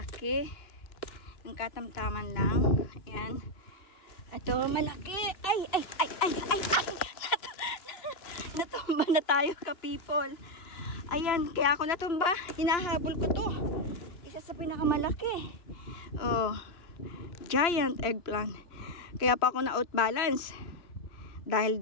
yung katamtaman lang. Ayan. Ito malaki. Ay natumba na tayo ka people. Ayan, kaya ako natumba, hinahabol ko to. Isa sa pinakamalaki. Oh, giant eggplant. Kaya pa ako na outbalance dahil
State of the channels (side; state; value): right; late; 2.9 ms